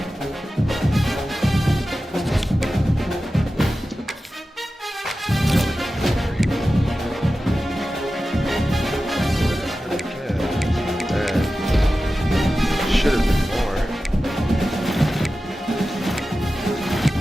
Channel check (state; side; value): normal; both; correlation 0.94